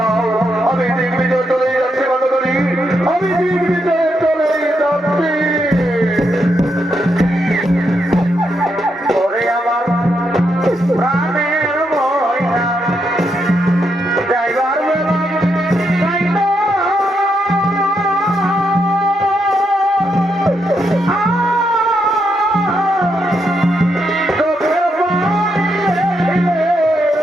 আমি দিক বিজয় চলে যাচ্ছি মাতাদারি, আমি দিক বিজয় চলে যাচ্ছি। ওরে আমার প্রাণের ময়না যাইবার বেলা যাইবা, চোখের পানি রেখে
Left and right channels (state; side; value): normal; both; correlation 0.80